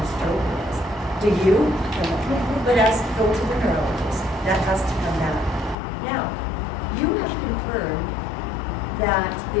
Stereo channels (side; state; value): right; drops out; at 5.8 s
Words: stroke it is. Do you? No. But go to the neurologist. That has to come out. Now, you have confirmed that